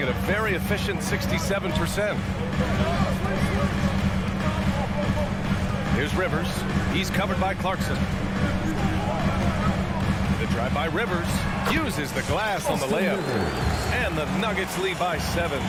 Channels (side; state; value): both; identical; correlation 1.00